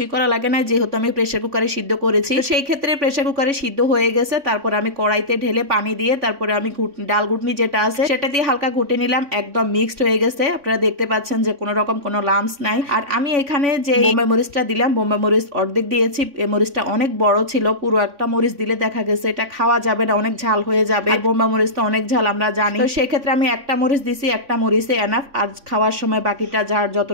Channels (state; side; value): late; left; 3.5 ms